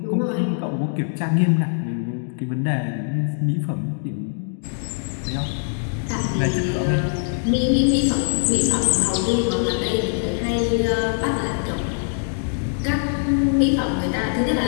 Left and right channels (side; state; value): right; silent; digital silence